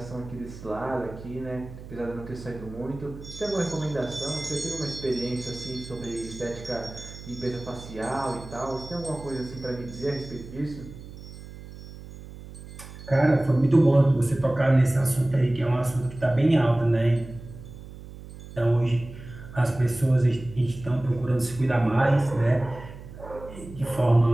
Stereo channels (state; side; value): noise; right; hum, 15 dB below the sound